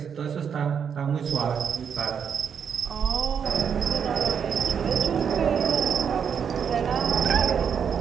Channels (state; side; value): quieter; left; 7.3 dB